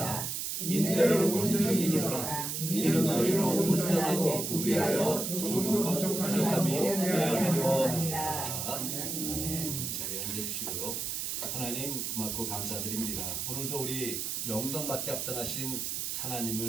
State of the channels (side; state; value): right; noise; hiss, 3 dB below the sound